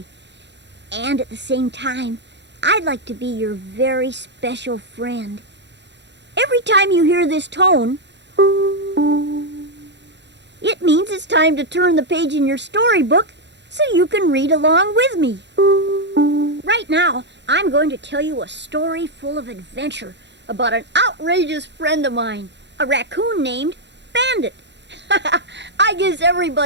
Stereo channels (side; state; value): left; late; 0.51 ms